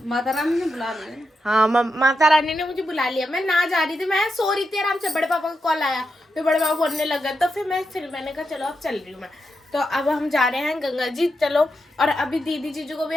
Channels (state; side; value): normal; both; correlation 0.86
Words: माता रानी ने बुला लिया। हाँ, माता रानी ने मुझे बुला लिया। मैं ना जा रही थी, मैं सो रही थी आराम से, बड़े पापा का कॉल आया, फिर बड़े पापा बोलने लगा, तो फिर मैंने कहा चलो अब चल रही हूँ मैं। तो अब हम जा रहे हैं गंगा जी, चलो। और अभी दीदी जीजू को भी